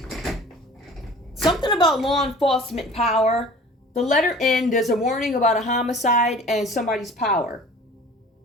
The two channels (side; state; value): both; normal; correlation 0.45